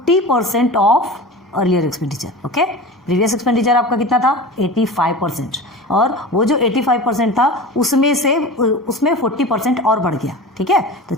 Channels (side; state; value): both; normal; correlation 0.33